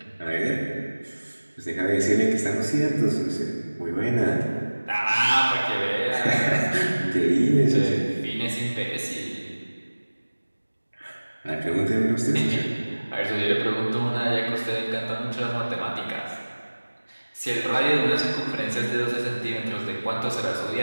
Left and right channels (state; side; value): inverted; both; correlation -1.00